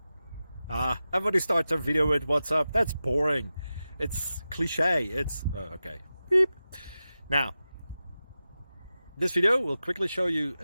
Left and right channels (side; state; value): both; inverted; correlation -0.93